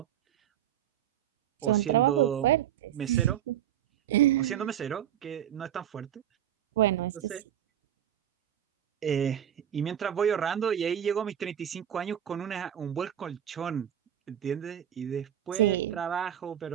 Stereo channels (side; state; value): left; quieter; 10.5 dB